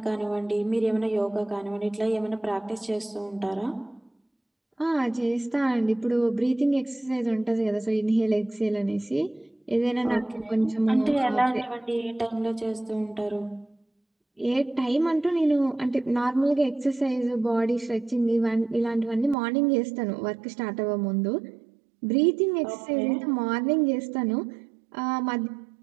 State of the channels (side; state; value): left; drops out; at 19.4 s